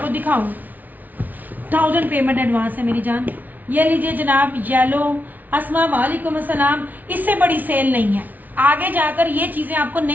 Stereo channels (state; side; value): late; left; 0.080 ms